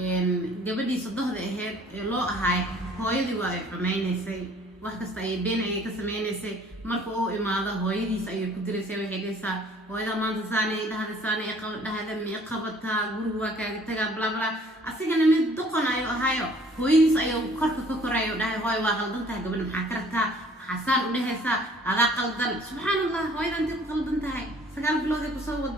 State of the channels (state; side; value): normal; both; correlation 0.55